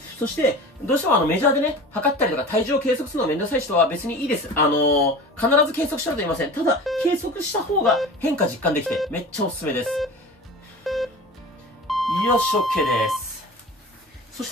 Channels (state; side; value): normal; both; correlation 0.36